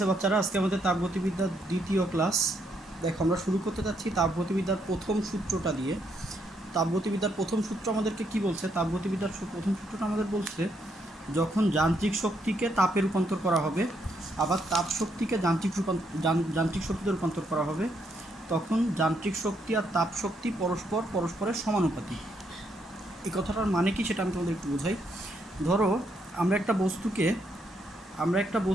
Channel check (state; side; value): normal; both; correlation 0.75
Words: বাচ্চারা, আজকে আমাদের তাপগতিবিদ্যার দ্বিতীয় ক্লাস। দেখো, আমরা শুরু করতে যাচ্ছি তাপগতিবিদ্যার প্রথম সূত্রটা দিয়ে। তাপগতিবিদ্যার প্রথম সূত্র আমাদেরকে কি বলছে? তাপগতিবিদ্যার প্রথম সূত্রটা আমাদের বলছে, যখন যান্ত্রিক শক্তিকে তাপে রূপান্তর করা হবে, আবার তাপ শক্তিকে যান্ত্রিক শক্তিতে রূপান্তর করা হবে, তখন যান্ত্রিক শক্তি আর তাপ শক্তি পরস্পরের সমানুপাতিক। এই কথাটার মানে কি সেটা আমি তোমাদের একটু বোঝাই। ধরো, আমরা একটা